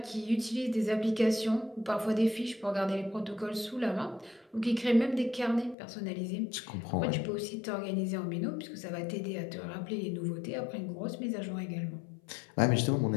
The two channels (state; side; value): drops out; right; at 5.8 s